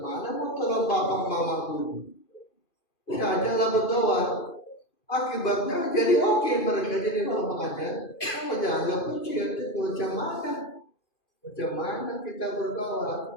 mana mau tolong bapak mama dulu. Saya ajalah berdoa. Akibatnya jadi oke, mereka jadi orang mengajar. Kamu jangan puji, itu macam mana? Macam mana kita berdoa?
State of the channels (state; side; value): late; right; 2.5 ms